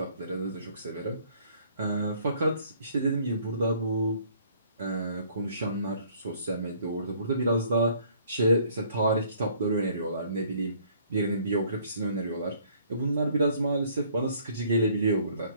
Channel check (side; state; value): both; inverted; correlation -0.59